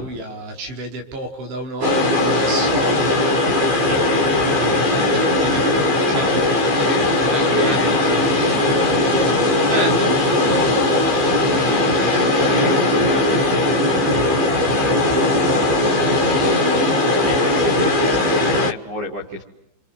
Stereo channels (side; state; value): left; late; 15 ms